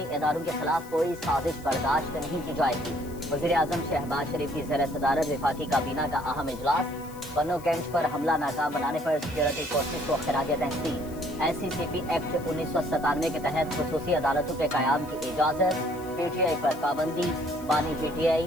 इदारों के खिलाफ कोई साजिश बर्दाश्त नहीं की जाएगी। वज़ीर आज़म शहबाज शरीफ की ज़ेर सदारत वफाकी काबीना का अहम इजलास। पन्नो कैंट पर हमला नाकाम बनाने पर सिक्योरिटी फोर्सेज को खिराज तहसीन। SCCP एक्ट 1997 के तहत खुसूसी अदालतों के क़याम की इजाज़त। पीटीआई पर पाबंदी। बानी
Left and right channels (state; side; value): noise; left; hiss, 20 dB below the sound